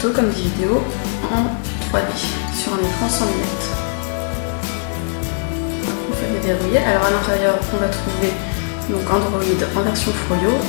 comme des vidéos en 3D sur un écran sans lunettes. On peut les déverrouiller. Alors à l'intérieur on va trouver donc Android en version Froyo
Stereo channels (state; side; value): silent; right; 65 dB below the other